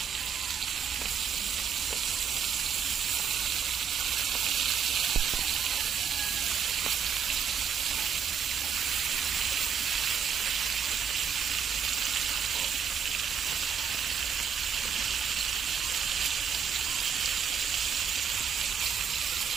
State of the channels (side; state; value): left; quieter; 7.4 dB